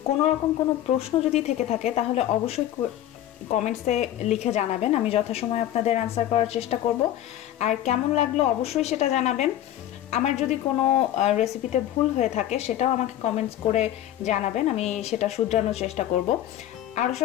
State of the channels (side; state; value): right; quieter; 12.4 dB